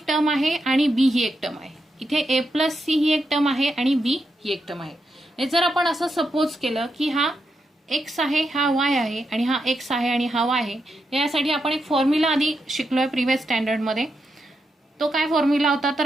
टर्म आहे आणि बी ही एक टर्म आहे. इथे ए प्लस सी ही एक टर्म आहे आणि बी ही एक टर्म आहे. जर आपण असं सपोज केलं की हा एक्स आहे, हा वाय आहे, आणि हा एक्स आहे आणि हा वाय आहे, यासाठी आपण एक फॉर्म्युला आधी शिकलोय प्रिव्हियस स्टँडर्डमध्ये. तो काय फॉर्म्युला होता तर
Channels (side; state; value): both; normal; correlation 0.84